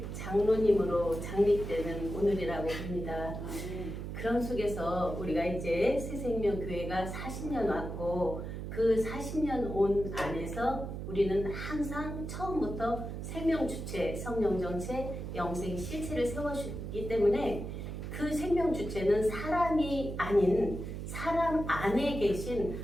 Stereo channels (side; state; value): right; noise; hum, 6 dB below the sound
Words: 장로님으로 장립되는 오늘이라고 봅니다. 그런 속에서 우리가 이제 새생명교회가 40년 왔고 그 40년 온 안에서 우리는 항상 처음부터 생명주체, 성령정체, 영생 실체를 세워주기 때문에 그 생명주체는 사람이 아닌 사람 안에 계신